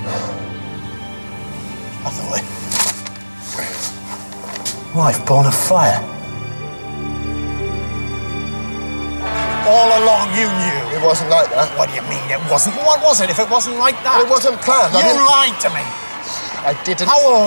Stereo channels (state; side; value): inverted; both; correlation -1.00